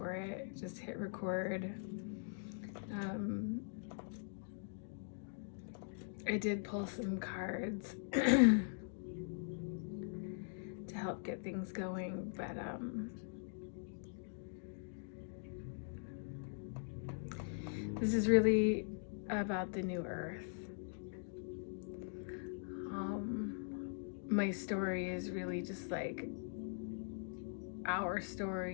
it, just hit record. I did pull some cards to help get things going, but this is really about the new earth. My story is really just like our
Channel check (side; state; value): right; silent; digital silence